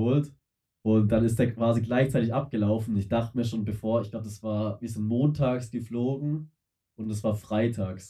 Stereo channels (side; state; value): both; identical; correlation 1.00